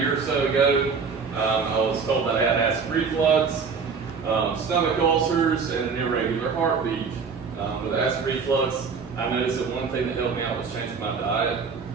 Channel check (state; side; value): quieter; left; 5.4 dB